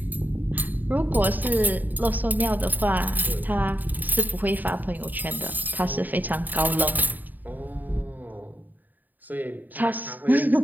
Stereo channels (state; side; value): late; left; 0.087 ms